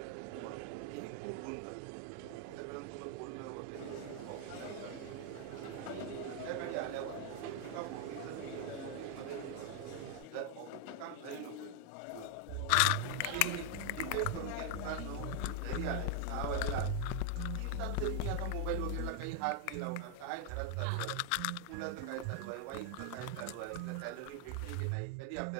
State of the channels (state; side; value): different; both; correlation 0.00